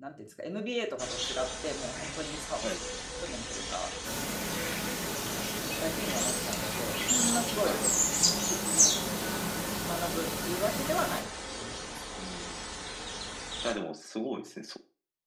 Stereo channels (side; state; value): both; identical; correlation 1.00